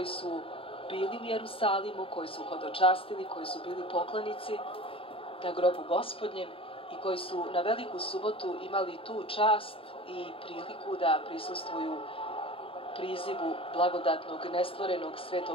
su bili u Jerusalimu, koji su hodočastili, koji su bili poklonici na grobu Gospodnjem i koji su na Veliku subotu imali tu čast i priliku da prisustvuju prizivu blagodatnog nestvorenog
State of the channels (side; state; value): right; late; 0.27 ms